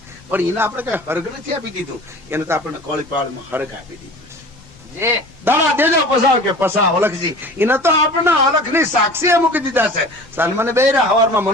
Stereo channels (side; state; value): left; noise; rumble, 25 dB below the sound